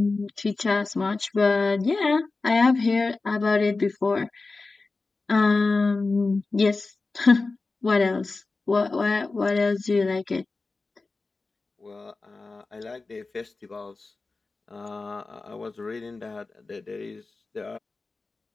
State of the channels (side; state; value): right; quieter; 3.7 dB